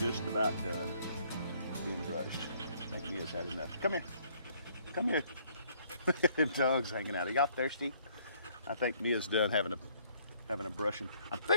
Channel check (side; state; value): both; inverted; correlation -0.64